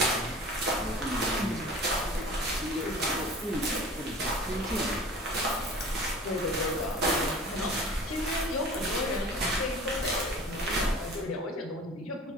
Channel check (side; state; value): both; normal; correlation 0.41